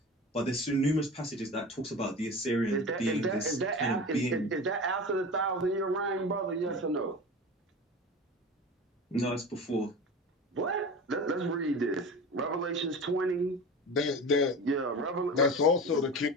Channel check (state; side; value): normal; both; correlation 0.32